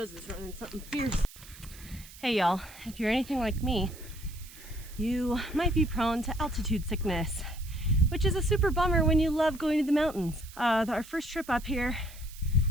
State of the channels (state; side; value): noise; right; hiss, 19 dB below the sound